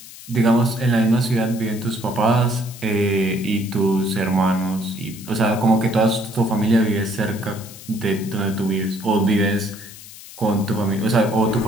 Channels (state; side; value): noise; left; hiss, 17 dB below the sound